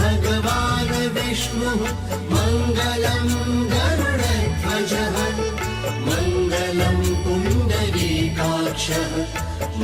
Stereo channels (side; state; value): both; identical; correlation 1.00